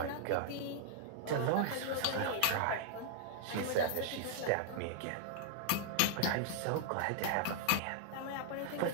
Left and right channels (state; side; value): different; both; correlation -0.01